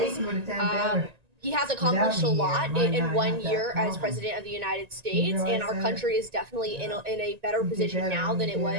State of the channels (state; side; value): late; left; 1.9 ms